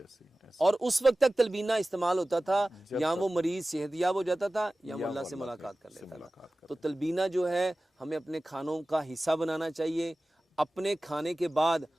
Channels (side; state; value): both; normal; correlation 0.97